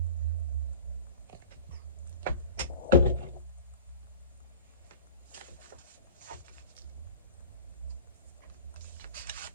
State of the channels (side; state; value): both; inverted; correlation -0.37